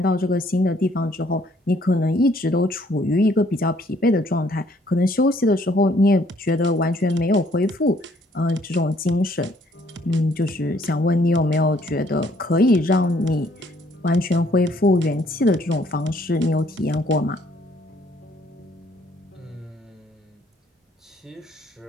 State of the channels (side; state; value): both; normal; correlation 0.64